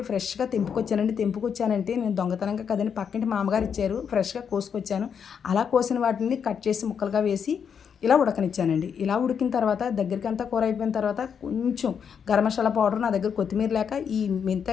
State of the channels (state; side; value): quieter; right; 7.2 dB